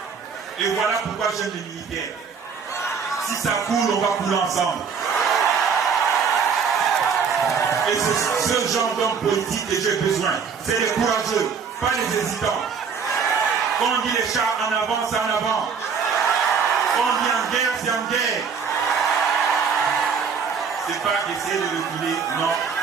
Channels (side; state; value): left; quieter; 6.1 dB